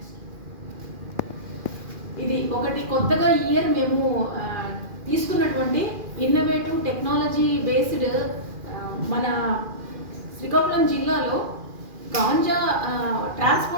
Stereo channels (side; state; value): left; late; 2.4 ms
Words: ఇది ఒకటి కొత్తగా ఈ ఇయర్ మేము తీసుకున్నటువంటి ఇన్నోవేటివ్ టెక్నాలజీ బేస్డ్ మన శ్రీకాకుళం జిల్లాలో గాంజా